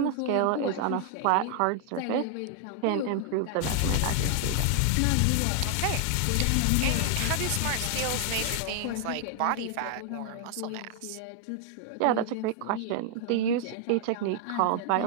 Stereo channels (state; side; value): different; both; correlation 0.00